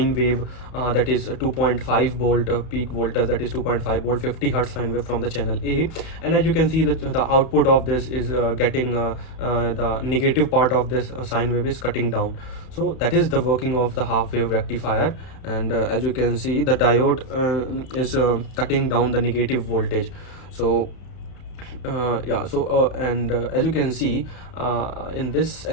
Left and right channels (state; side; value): late; right; 31 ms